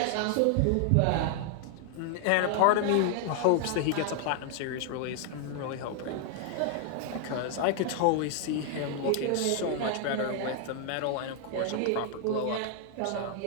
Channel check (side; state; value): both; different; correlation 0.00